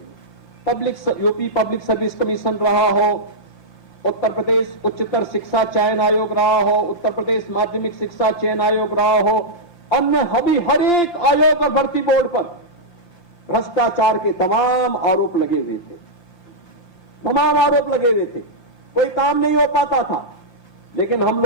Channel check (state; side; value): late; right; 1.2 ms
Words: यूपी पब्लिक सर्विस कमीशन रहा हो, उत्तर प्रदेश उच्चतर शिक्षा चयन आयोग रहा हो, उत्तर प्रदेश माध्यमिक शिक्षा चयन आयोग रहा हो, अन्य हर एक आयोग और भर्ती बोर्ड पर भ्रष्टाचार के तमाम आरोप लगे हुए थे। तमाम आरोप लगे हुए थे, कोई काम नहीं हो पाता था। लेकिन हम